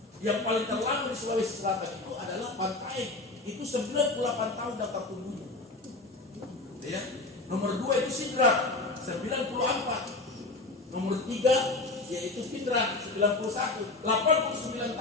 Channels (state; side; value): quieter; right; 3.2 dB